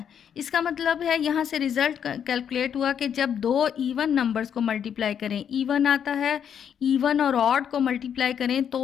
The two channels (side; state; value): right; quieter; 8.4 dB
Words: इसका मतलब है यहाँ से रिजल्ट कैलकुलेट हुआ कि जब दो इवन नंबर्स को मल्टीप्लाई करें इवन आता है, इवन और ऑड को मल्टीप्लाई करें